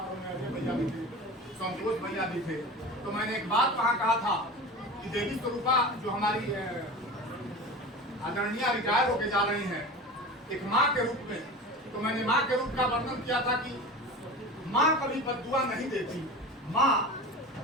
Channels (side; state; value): both; normal; correlation 0.32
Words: में अजय भैया भी थे, संतोष भैया भी थे। तो मैंने एक बात वहाँ कहा था कि देवी स्वरूपा जो हमारी आदरणीय रिटायर होके जा रही हैं एक माँ के रूप में, तो मैंने माँ के रूप का वर्णन किया था कि माँ कभी बद्दुआ नहीं देती। माँ